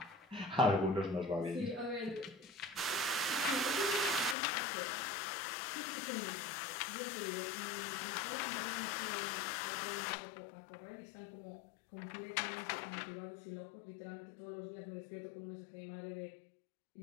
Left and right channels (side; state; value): right; drops out; at 4.4 s